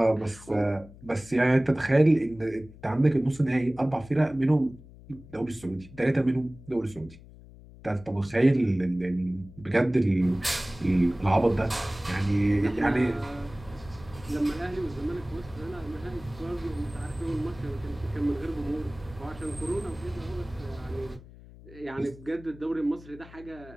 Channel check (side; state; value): left; noise; hum, 20 dB below the sound